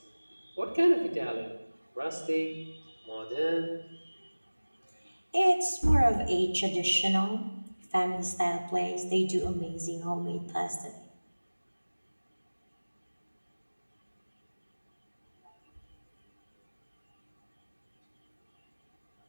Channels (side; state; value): both; inverted; correlation -1.00